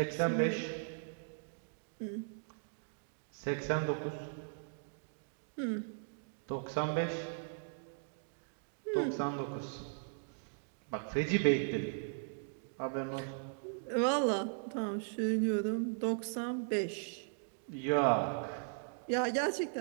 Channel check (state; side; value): silent; left; digital silence